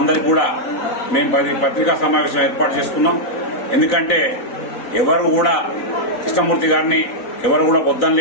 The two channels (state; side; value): late; right; 4.0 ms